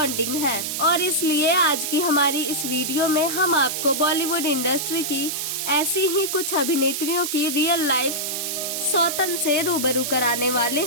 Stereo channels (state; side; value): noise; right; hiss, 3 dB below the sound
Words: है। और इसलिए आज की हमारी इस वीडियो में हम आपको बॉलीवुड इंडस्ट्री की ऐसी ही कुछ अभिनेत्रियों की रियल लाइफ सौतन से रूबरू कराने वाले